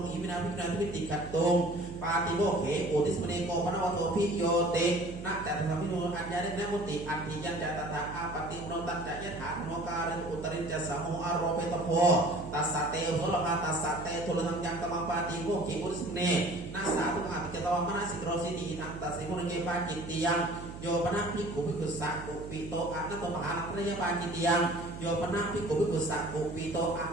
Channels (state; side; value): noise; right; hum, 11 dB below the sound